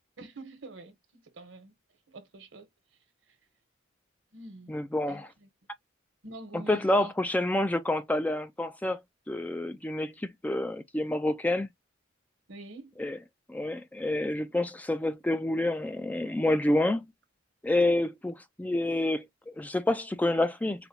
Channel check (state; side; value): normal; both; correlation 0.87